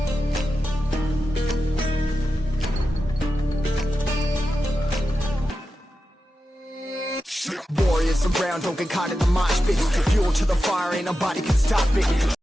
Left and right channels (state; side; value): normal; both; correlation 0.91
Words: Warriors around, don't get caught in the mosh pit. Fuel to the fire, ain't nobody can stop it.